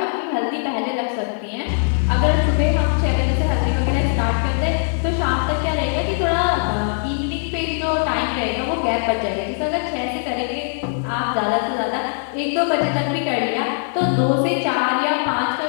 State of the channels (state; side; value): silent; right; 65 dB below the other